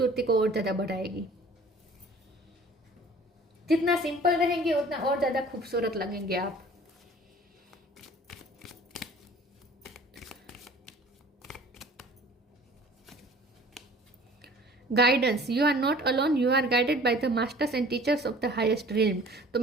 को और ज़्यादा बढ़ाएगी। जितना सिंपल रहेंगे उतना और ज़्यादा खूबसूरत लगेंगे आप। Guidance, you are not alone, you are guided by the masters and teachers of the highest realm. तो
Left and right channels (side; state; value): both; normal; correlation 0.48